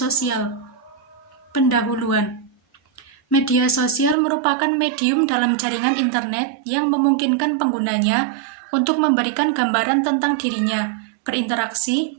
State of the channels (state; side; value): drops out; left; at 4.2 s